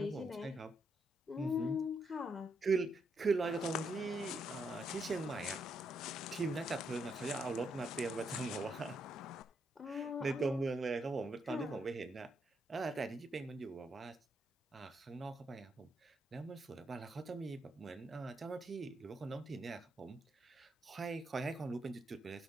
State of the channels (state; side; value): normal; both; correlation 0.78